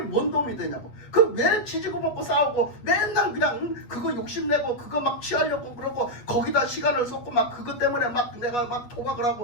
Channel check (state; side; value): late; right; 8.4 ms